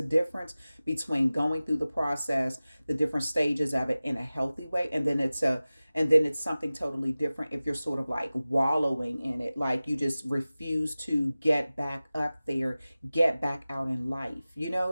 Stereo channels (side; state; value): both; inverted; correlation -0.97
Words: difference between going through the process, the different stages of it in a healthy way, and then it's something totally different if you're sort of like wallowing in it, like you just refuse to get back up there, get back out in life. You know